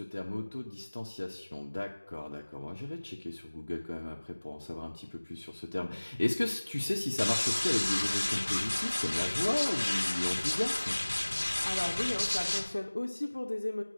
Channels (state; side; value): inverted; both; correlation -1.00